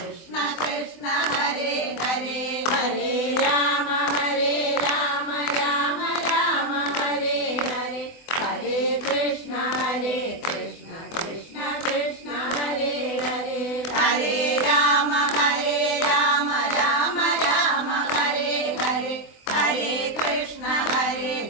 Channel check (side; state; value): right; late; 23 ms